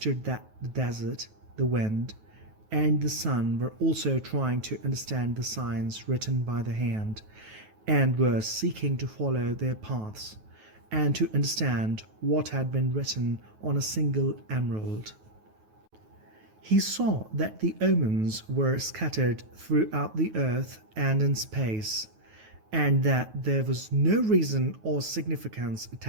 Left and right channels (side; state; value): left; late; 9.3 ms